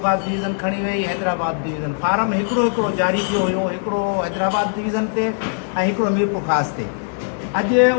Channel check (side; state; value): right; silent; digital silence